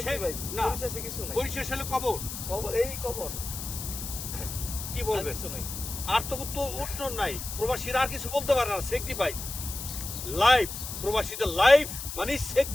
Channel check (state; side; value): noise; left; hiss, 7 dB below the sound